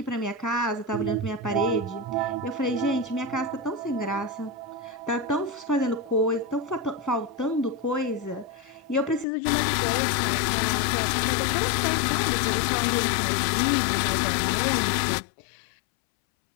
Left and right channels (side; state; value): right; drops out; at 9.2 s